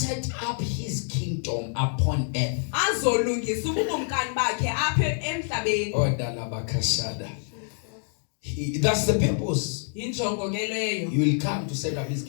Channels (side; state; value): right; silent; 60 dB below the other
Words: up his kingdom upon earth. Oh, Dalabakashada. That's the purpose. Injongo ke leyo. He will come to set up his